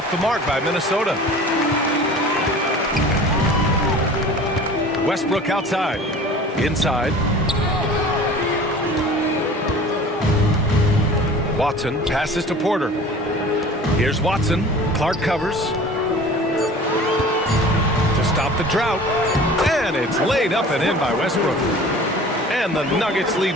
the mark by Minnesota. Westbrook outside. Inside. Watson passes to Porter. Here's Watson. Clark covers. To stop the drought. And it's laid up and in by Westbrook. And the Nuggets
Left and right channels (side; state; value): both; normal; correlation 0.43